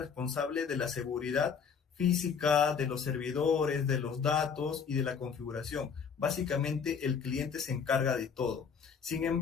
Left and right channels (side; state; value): right; quieter; 6.4 dB